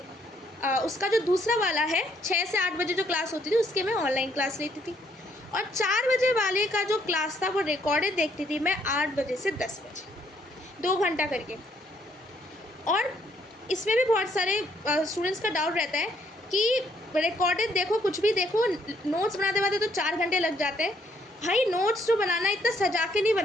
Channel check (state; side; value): normal; both; correlation 0.69